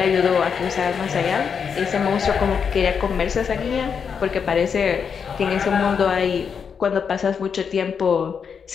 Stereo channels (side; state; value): right; quieter; 6.6 dB